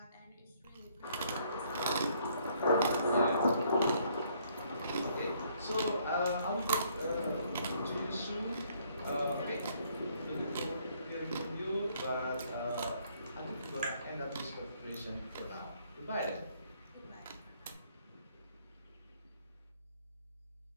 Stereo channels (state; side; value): inverted; both; correlation -0.66